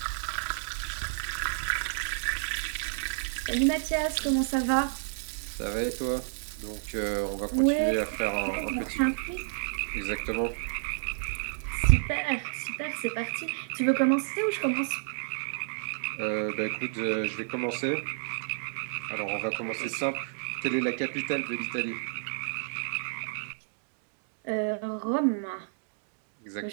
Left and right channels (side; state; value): left; silent; digital silence